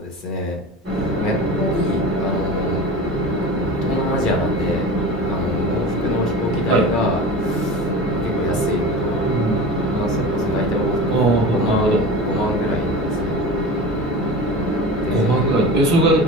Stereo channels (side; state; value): both; normal; correlation 0.32